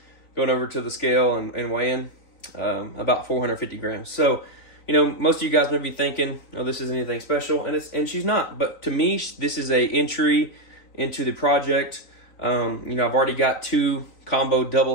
going over to the scale and weighing about 450 grams. So, you know, most of you guys may be thinking, oh, this isn't anything special, and she's not. But to me, this is a entry into the project. You know, I've already got 2 combo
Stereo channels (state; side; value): late; right; 3.9 ms